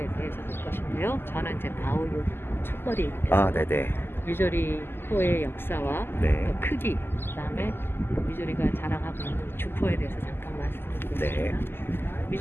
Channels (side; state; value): right; late; 0.11 ms